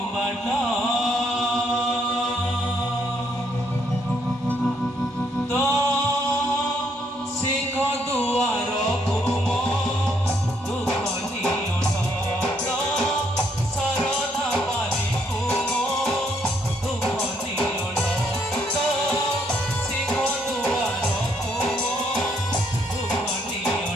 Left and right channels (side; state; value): both; normal; correlation 0.71